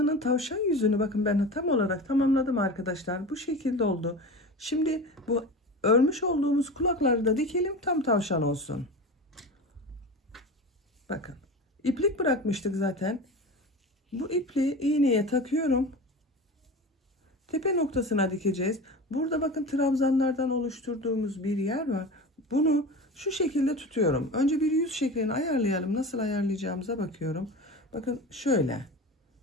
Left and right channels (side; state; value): both; normal; correlation 0.31